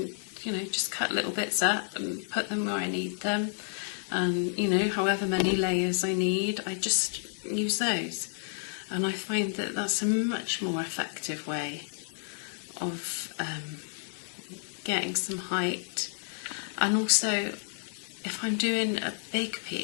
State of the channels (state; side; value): silent; right; digital silence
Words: just cut little bits up and put them where I need them, and however many layers I need, I just use those, and I find that that's a much more effective way of getting some height. And also, if I'm doing a big